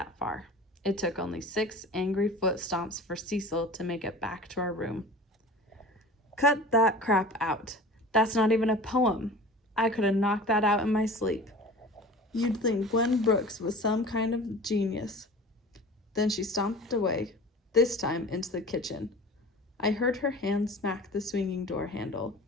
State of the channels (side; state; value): both; normal; correlation 0.38